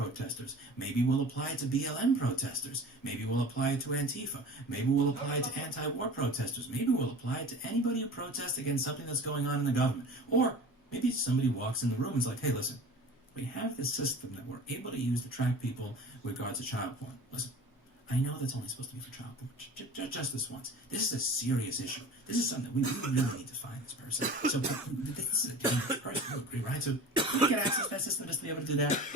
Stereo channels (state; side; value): normal; both; correlation 0.38